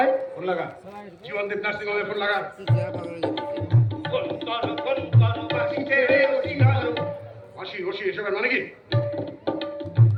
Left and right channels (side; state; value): both; identical; correlation 1.00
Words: ফোন লাগা, জীবনদীপ নার্সিং হোমে ফোন লাগা। হাসি হসি এসবের মানে কি?